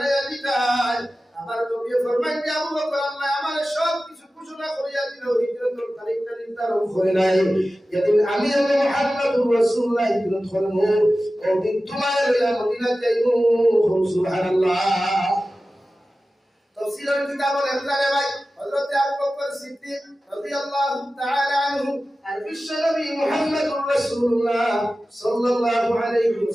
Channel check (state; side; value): normal; both; correlation 0.95